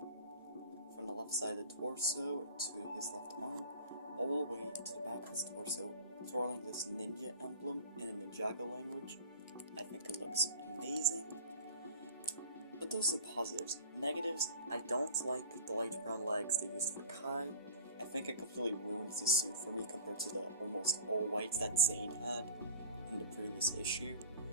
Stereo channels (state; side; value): inverted; both; correlation -0.39